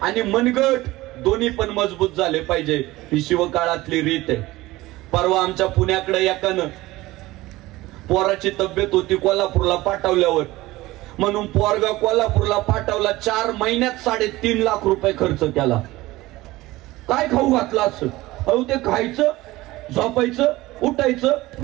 आणि मनगट दोन्ही पण मजबूत झाले पाहिजे. ही शिवकाळातली रीत आहे. परवा आमच्या पुण्याकडे एकानं पोराची तब्येत होती, कोल्हापूरला पाठवल्यावर म्हणून पोरगा कोल्हापूरला पाठवला. 4 महिन्यात 3.5 लाख रुपये खर्च केला. काय खाऊ घातलं असं? अहो ते खायचं, झोपायचं, उठायचं,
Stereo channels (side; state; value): left; quieter; 18.6 dB